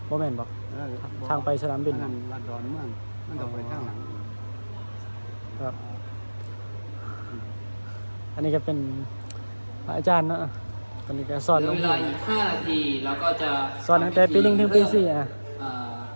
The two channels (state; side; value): inverted; both; correlation -1.00